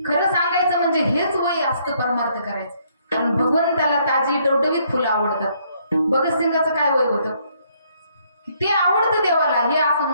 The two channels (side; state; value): both; inverted; correlation -0.68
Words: खरं सांगायचं म्हणजे हेच वय असतं परमार्थ करायचं. कारण भगवंताला ताजी टवटवीत फुलं आवडतात. भगतसिंगाचं काय वय होतं? ते आवडतं देवाला. हे असं